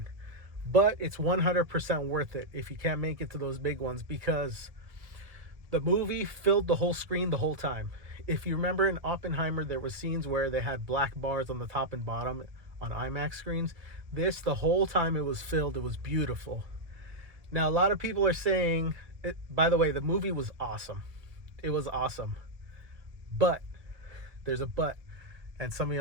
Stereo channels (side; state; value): left; late; 1.8 ms